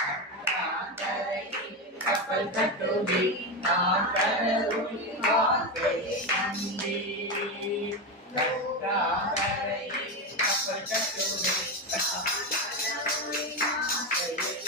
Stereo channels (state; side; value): normal; both; correlation 0.14